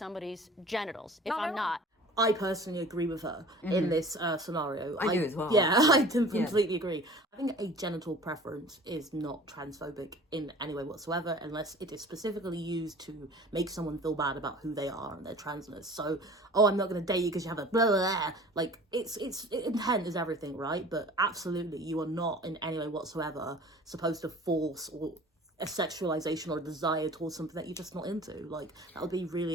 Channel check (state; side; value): normal; both; correlation 0.44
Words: genitals if I'm not. I personally agree with her in this scenario. I do as well. Yeah, I completely agree. I think a genital preference is not transphobic in any way whatsoever unless it is specifically used to make someone feel bad about who they are and their transness. So, I'm not going to date you because you have a blah, blah, blah. Like, it's intent is everything, right? But absolutely, you are not in any way whatsoever supposed to force or a sexualization or a desire towards something that you're just not into. Like, that would be